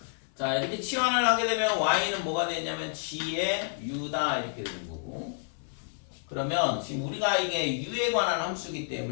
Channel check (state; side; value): silent; right; 58 dB below the other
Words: 자, 이렇게 치환을 하게 되면 y는 뭐가 되냐면 g의 u다 이렇게 되는 거고, 그러면 지금 우리가 이게 u에 관한 함수이기